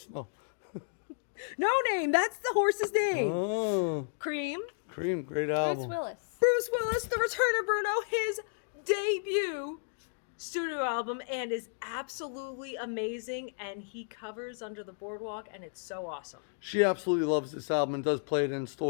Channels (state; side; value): silent; right; digital silence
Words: No. No name, that's the horse's name. Oh. Cream, Cream, great Bruce album. Willis. Bruce Willis, The Return of Bruno, his debut studio album, and is absolutely amazing, and he covers Under the Boardwalk, and it's so awesome. She absolutely loves this album and does play it in